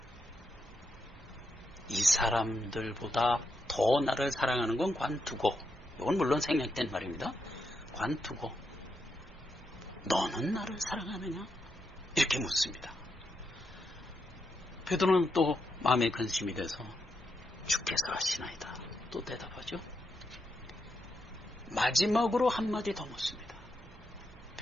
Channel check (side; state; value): both; normal; correlation 0.83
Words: 이 사람들보다 더 나를 사랑하는 건 관두고, 이건 물론 생략된 말입니다. 관두고 너는 나를 사랑하느냐? 이렇게 묻습니다. 베드로는 또 마음에 근심이 돼서 주께서 하시나이다 또 대답하죠. 마지막으로 한마디 더 묻습니다.